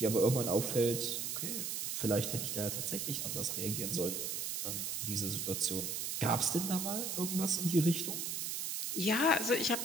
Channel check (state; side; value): noise; right; hiss, 2 dB below the sound